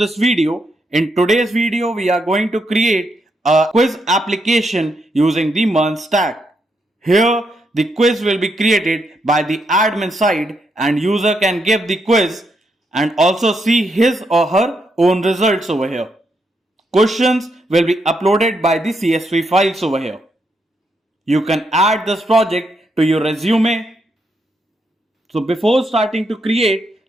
video. In today's video, we are going to create a quiz application using the MERN Stack. Here, the quiz will be created by the admin side and user can give the quiz and also see his or her own results over here. Questions will be uploaded by the CSV files over here. You can add this project to your resume. So before starting to create,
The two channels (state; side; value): normal; both; correlation 0.79